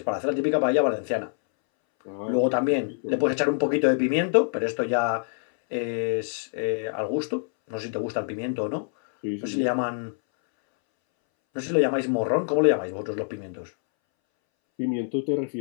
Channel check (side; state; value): right; silent; 61 dB below the other